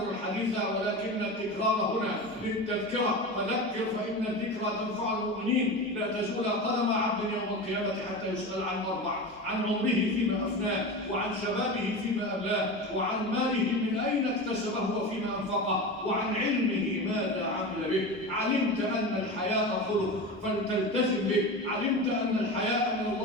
الحديث ولكن التكرار هنا للتذكرة، فذكر فإن الذكرى تنفع المؤمنين. لا تزول قدم عبد يوم القيامة حتى يسأل عن أربع: عن عمره فيما أفناه، وعن شبابه فيما أبلاه، وعن ماله من أين اكتسبه وفيما أنفقه، وعن علمه ماذا عمل به. علمت أن الحياء خلق فلتلتزم به، علمت أن الحياء من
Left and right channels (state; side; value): normal; both; correlation 0.26